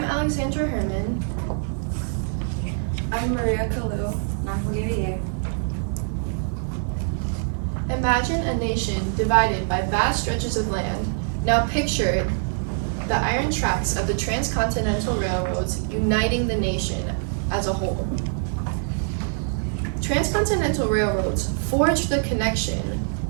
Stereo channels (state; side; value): silent; left; digital silence